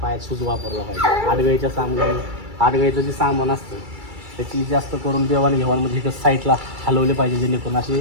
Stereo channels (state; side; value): late; left; 2.3 ms